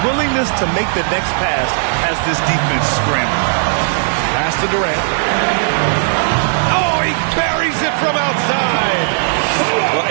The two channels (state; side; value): silent; left; digital silence